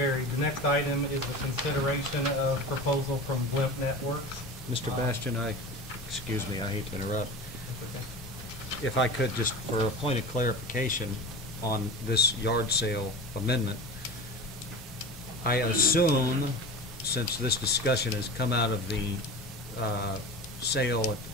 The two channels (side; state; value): both; normal; correlation 0.31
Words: The next item is the consideration of proposal from Blimp Networks. Mr. Bastian, excuse me, I hate to interrupt. That's okay. If I could, just for a point of clarification on this yard sale amendment, I assume, since this discussion has come out of the sale at the